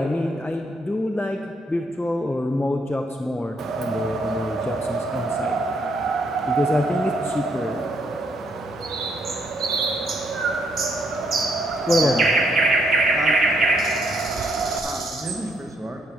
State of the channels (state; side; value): normal; both; correlation 0.73